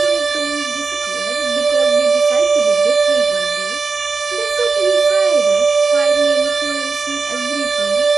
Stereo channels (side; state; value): left; quieter; 4.3 dB